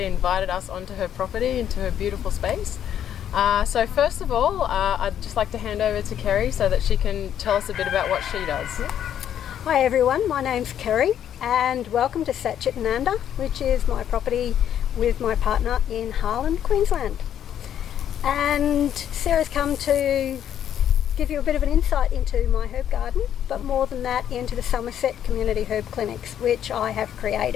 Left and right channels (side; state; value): right; quieter; 9.9 dB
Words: invited us onto her property, into her beautiful space. So first of all, I'd just like to hand over to Kerrie so that she can tell us a bit about what she does. Hi everyone, my name's Kerrie and welcome to Satchitananda, which is my property with my partner in Harlan, Queensland. And Sarah's come to give you a bit of an insight into my herb garden, but more than that into the Somerset Community herb clinics, which I have